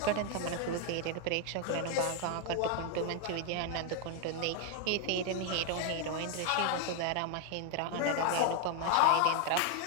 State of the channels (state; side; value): different; both; correlation 0.01